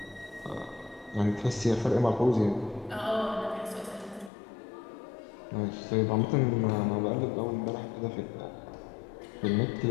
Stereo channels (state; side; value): drops out; right; at 4.3 s